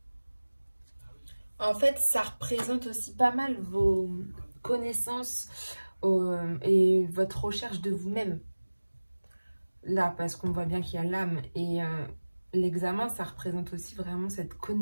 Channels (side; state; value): both; inverted; correlation -1.00